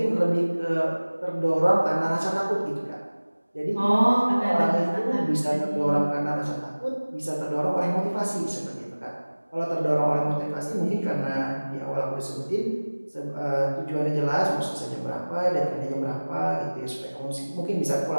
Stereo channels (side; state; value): both; inverted; correlation -1.00